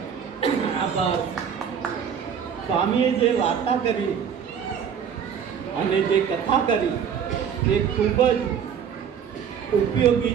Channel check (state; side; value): quieter; left; 7.7 dB